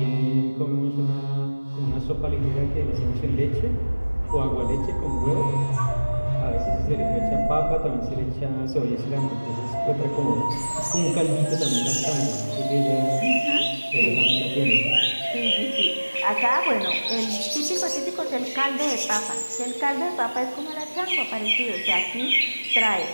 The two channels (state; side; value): inverted; both; correlation -1.00